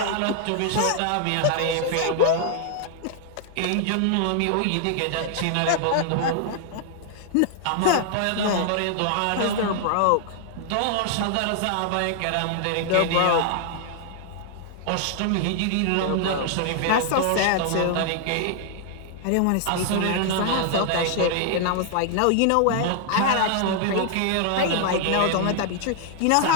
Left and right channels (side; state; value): both; different; correlation 0.00